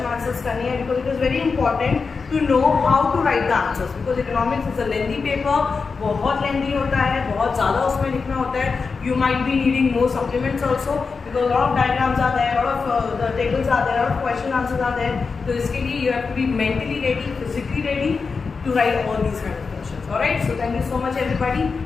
आंसर्स करनी है, because it is very important to know how to write the answers, because economics is a lengthy paper, बहुत lengthy होता है, बहुत ज़्यादा उसमें लिखना होता है। You might be needing more supplements also, because lot of diagrams are there, lot of the tables are there, lot of question answers are there. तो इसके लिए you have to be mentally ready, physically ready to write all these kind of questions. Alright, so thank you so much everybody.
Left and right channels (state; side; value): quieter; right; 4.8 dB